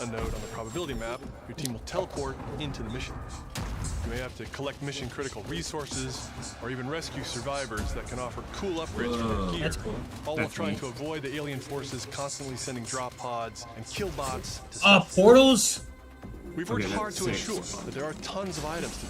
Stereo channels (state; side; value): identical; both; correlation 1.00